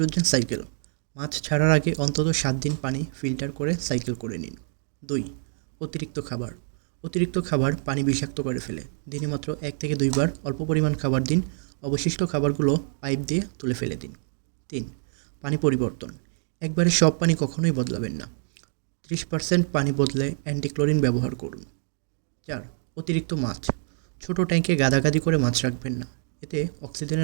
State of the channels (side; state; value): left; silent; 55 dB below the other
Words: cycle. মাছ ছাড়ার আগে অন্তত ৭ দিন পানি ফিল্টার করে সাইকেল করে নিন। ২. অতিরিক্ত খাবার। অতিরিক্ত খাবার পানি বিষাক্ত করে ফেলে। দিনে মাত্র ১ থেকে ২ বার অল্প পরিমাণ খাবার দিন। অবশিষ্ট খাবারগুলো পাইপ দিয়ে তুলে ফেলে দিন। ৩. পানি পরিবর্তন। একবারে সব পানি কখনোই বদলাবেন না। ৩০% পানি বদলে অ্যান্টিক্লোরিন ব্যবহার করুন। ৪. অতিরিক্ত মাছ। ছোট ট্যাঙ্কে গাদাগাদি করে মাছ রাখবেন না। এতে